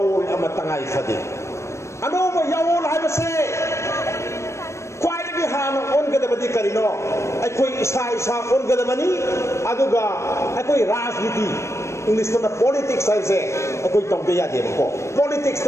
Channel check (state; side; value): late; right; 0.13 ms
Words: ꯑꯃ ꯇꯉꯥꯏ ꯐꯗꯦ ꯑꯅꯧꯕ ꯌꯥꯑꯣꯜ ꯍꯥꯏꯕꯁꯦ ꯈ꯭ꯋꯥꯏꯗꯒꯤ ꯍꯥꯟꯅ ꯑꯣꯟꯒꯗꯕꯗꯤ ꯀꯔꯤꯅꯣ ꯑꯩꯈꯣꯏ ꯏꯁꯥ ꯑꯣꯟꯒꯗꯕꯅꯤ ꯑꯗꯨꯒ ꯑꯩꯈꯣꯏ ꯔꯥꯖꯅꯤꯇꯤ ꯏꯪꯂꯤꯁꯇꯅ ꯄꯣꯂꯤꯇꯤꯛꯁ ꯍꯥꯏꯕꯁꯦ ꯑꯩꯈꯣꯏ ꯇꯧꯗ ꯌꯥꯗꯦꯕꯀꯣ